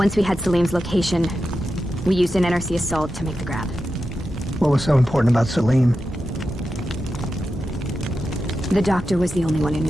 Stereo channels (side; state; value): both; normal; correlation 0.90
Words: we had Salim's location, we used an NRC assault to make the grab. What was so important about Salim? The doctor was the only one who